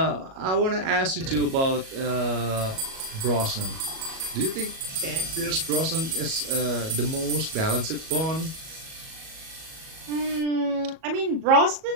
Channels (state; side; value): late; left; 37 ms